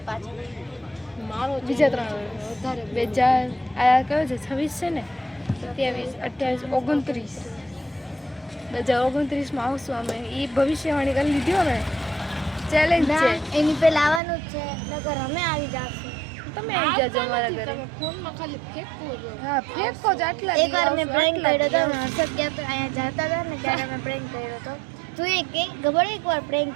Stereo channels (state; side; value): drops out; left; at 14.2 s